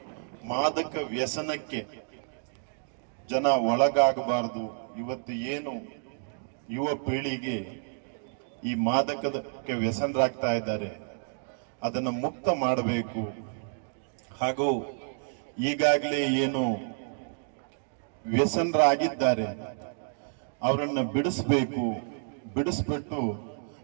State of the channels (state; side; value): silent; left; digital silence